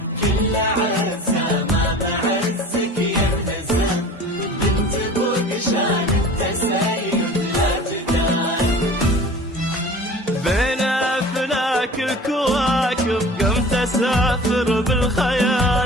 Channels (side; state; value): both; normal; correlation 0.41